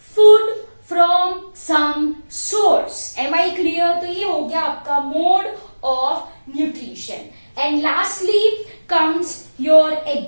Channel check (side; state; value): both; inverted; correlation -1.00